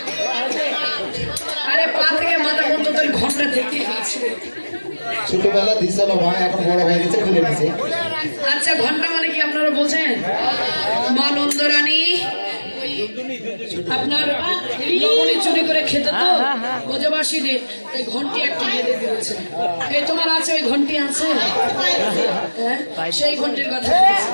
আরে পা থেকে মাথা পর্যন্ত তোর ঘন্টা দেখতে পাচ্ছি ছোটবেলা দিছিল ভাই এখন বড় হয়ে গেছে খুলে দিছে আচ্ছা ঘন্টা মানে কি আপনারা বোঝেন মা নন্দরানী আপনার লবণী চুরি করে খেতে তো ব্রজবাসীদের এই ঘন্টি একটা বেঁধে দিয়েছে এই তোমার আছে ওই ঘন্টি আছে হ্যাঁ সেই ঘন্টির কথা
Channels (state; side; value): inverted; both; correlation -1.00